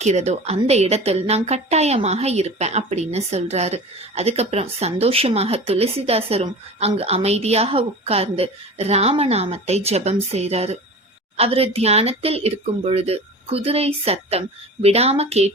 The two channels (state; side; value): normal; both; correlation 0.35